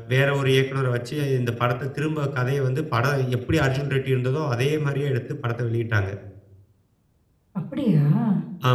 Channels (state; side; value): identical; both; correlation 1.00